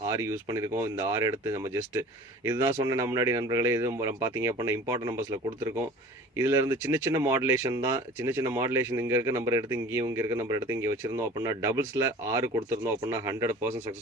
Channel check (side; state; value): both; normal; correlation 0.43